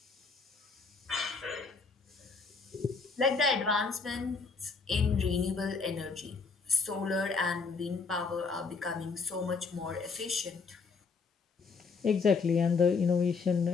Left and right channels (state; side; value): quieter; right; 4.7 dB